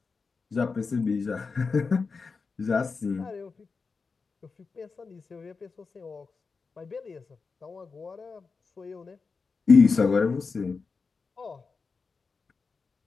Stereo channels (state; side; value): quieter; right; 4.7 dB